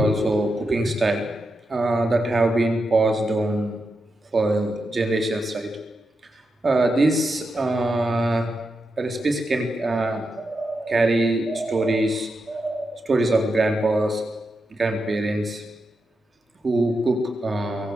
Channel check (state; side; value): normal; both; correlation 0.87